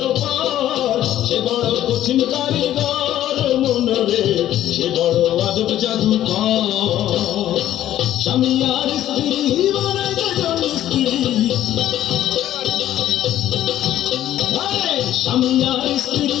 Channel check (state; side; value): quieter; right; 12.5 dB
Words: পার। সে বড় কঠিন কারিগর মনরে, সে বড় আজব জাদুকর। স্বামী আর স্ত্রী বানায় দুজন স্ত্রী, স্বামী আর স্ত্রী